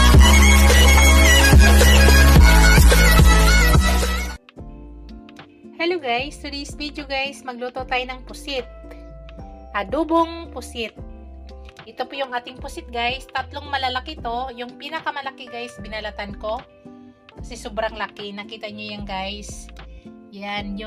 Hello guys, today's video guys, magluto tayo ng pusit. Adobong pusit. Ito po yung ating pusit guys, tatlong malalaki to. Yung pinakamalaki guys, binalatan ko. Kasi sobrang laki, nakita nyo yan guys. Yan,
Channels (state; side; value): identical; both; correlation 1.00